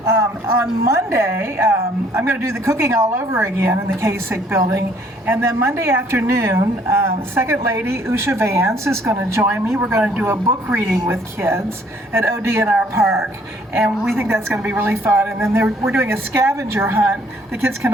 On Monday, I'm going to do the cooking all over again in the Kasich building. And then Monday afternoon, Second Lady Usha Vance is going to join me. We're going to do a book reading with kids at ODNR Park. And we think that's going to be really fun. And then we're doing a scavenger hunt. The kids can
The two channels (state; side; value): normal; both; correlation 0.62